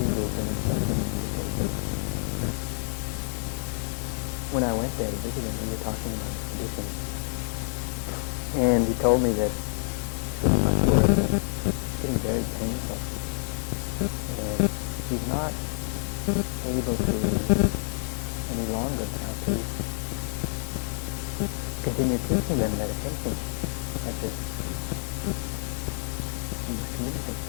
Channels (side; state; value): right; silent; 59 dB below the other